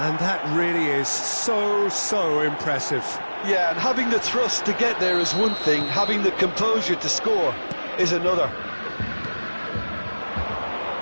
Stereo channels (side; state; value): both; inverted; correlation -1.00